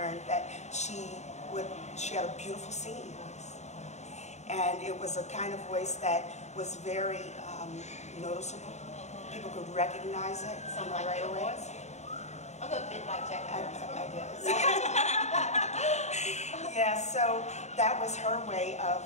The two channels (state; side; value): late; right; 0.33 ms